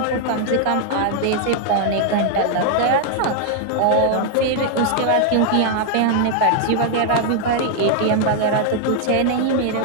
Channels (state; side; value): different; both; correlation 0.00